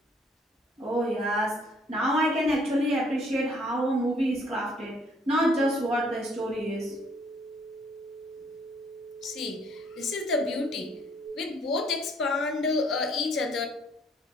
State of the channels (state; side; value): normal; both; correlation 0.63